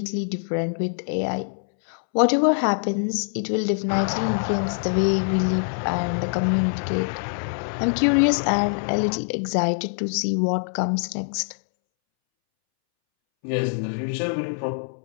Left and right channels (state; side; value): silent; right; 63 dB below the other